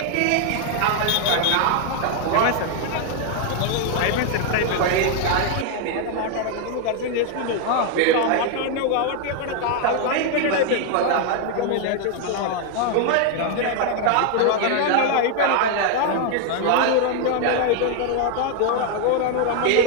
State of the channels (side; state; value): both; different; correlation 0.00